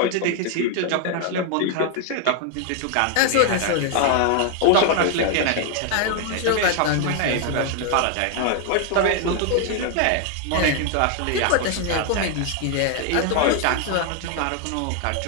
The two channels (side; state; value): both; different; correlation 0.01